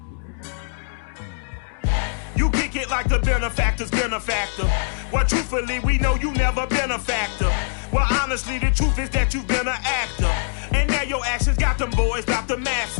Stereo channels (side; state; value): right; silent; digital silence